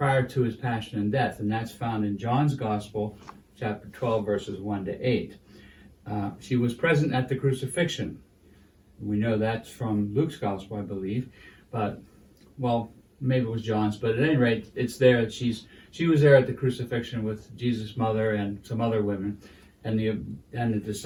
to his passion and death. And that's found in John's Gospel, chapter 12, verses 1 to 8. She was present at the crucifixion. We know that's from Luke's Gospel, I believe. But, well, maybe it was John's. But at any rate, it's there that she was there at the crucifixion with Jesus' mother and some other women and the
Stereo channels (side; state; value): both; identical; correlation 1.00